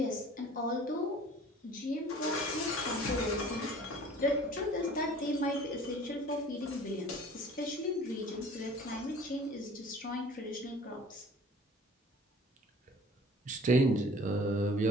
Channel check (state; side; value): normal; both; correlation 0.48